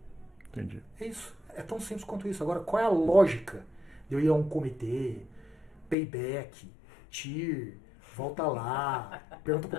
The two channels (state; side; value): drops out; right; at 6.0 s